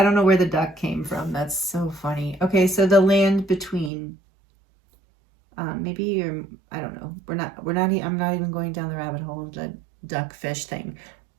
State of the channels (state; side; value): drops out; left; at 3.9 s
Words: don't know where the duck came from. That's so funny. Okay, so the land between... maybe you're... I don't know. I'm not even going down the rabbit hole of the duck fish thing.